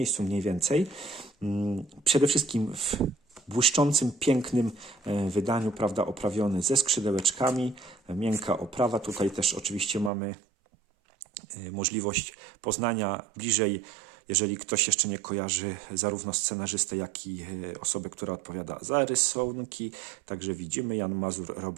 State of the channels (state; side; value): drops out; left; at 10.1 s